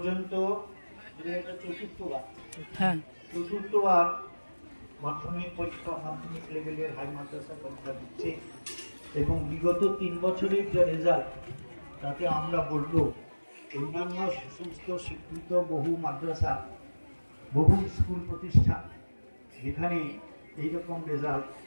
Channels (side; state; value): both; inverted; correlation -1.00